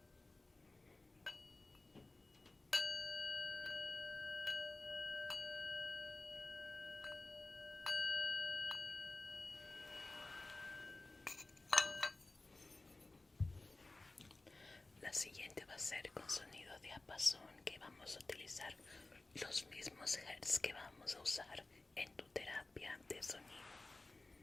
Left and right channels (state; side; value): quieter; right; 3.1 dB